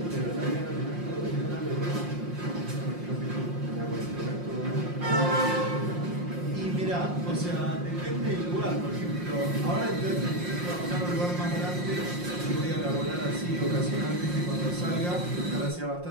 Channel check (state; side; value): late; left; 5.6 ms